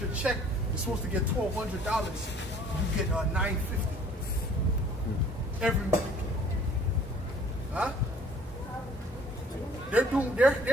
your check, you're supposed to get $1,200, you get $950 every week. Huh?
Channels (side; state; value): both; normal; correlation 0.54